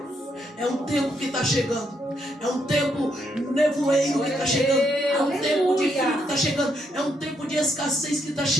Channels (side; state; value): both; normal; correlation 0.76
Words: É um tempo que está chegando. É um tempo nevoeiro que está chegando. É um tempo de frio que está chegando. É um tempo de escassez que está